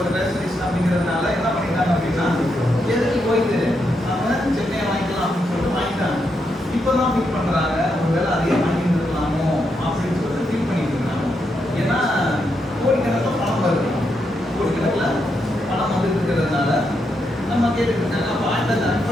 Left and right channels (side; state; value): both; normal; correlation 0.81